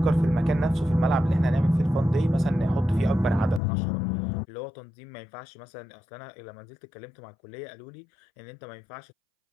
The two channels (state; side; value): drops out; right; at 3.6 s